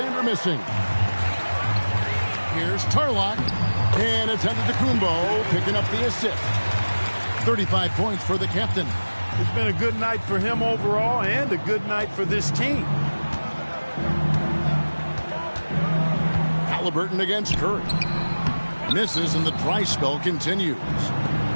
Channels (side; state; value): both; inverted; correlation -1.00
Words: missing. Here's Tarlock, and it's Antetokounmpo picking up the assist. 35 points for the captain. It's been a good night for him overall and a good night for this team. Halliburton against Curry. Misses and the dry spell continues.